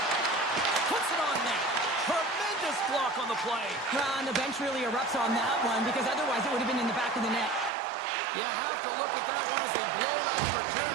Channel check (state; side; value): drops out; left; at 7.7 s